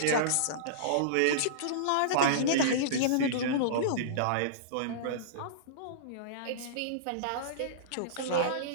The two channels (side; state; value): both; different; correlation -0.03